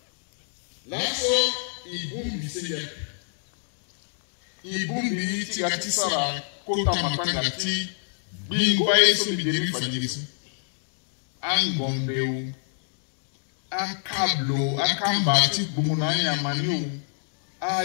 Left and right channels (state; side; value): silent; right; digital silence